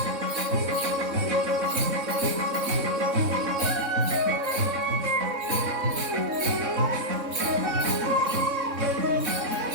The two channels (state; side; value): late; left; 3.6 ms